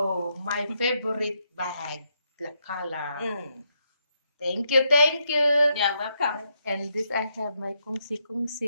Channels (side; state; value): both; inverted; correlation -0.78